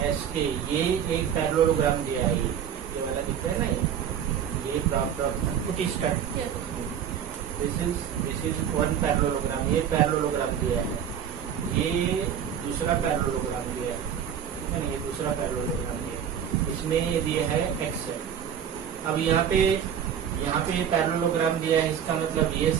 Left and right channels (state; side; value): quieter; left; 8.8 dB